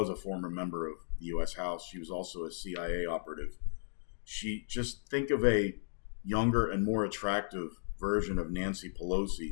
a former member of the U.S. House. She was also a CIA operative. She, just think of a younger and more attractive version of Nancy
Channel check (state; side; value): silent; right; digital silence